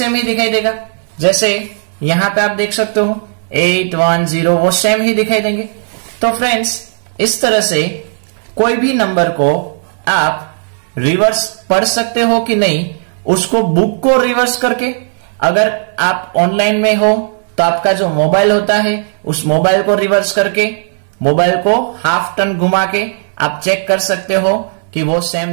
ही दिखाई देगा, जैसे यहां पे आप देख सकते हो 8 1 0, वो सेम ही दिखाई देंगे। तो फ्रेंड्स इस तरह से कोई भी नंबर को आप रिवर्स पढ़ सकते हो कि नहीं, उसको बुक को रिवर्स करके, अगर आप ऑनलाइन में हो तो आपका जो मोबाइल होता है उस मोबाइल को रिवर्स करके, मोबाइल को हाफ टर्न घुमा के आप चेक कर सकते हो कि वो सेम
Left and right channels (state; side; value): silent; left; digital silence